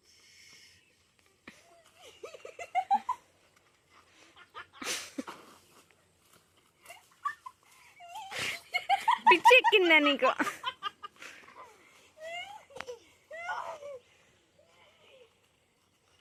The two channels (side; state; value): both; identical; correlation 1.00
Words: పిచ్చి ఎక్కిందా నీకు?